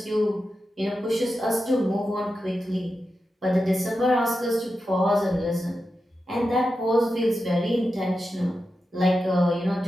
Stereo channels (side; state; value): both; normal; correlation 0.90